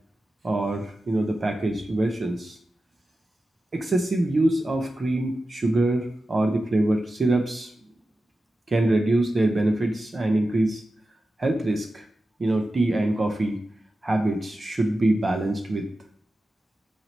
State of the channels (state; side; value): normal; both; correlation 0.93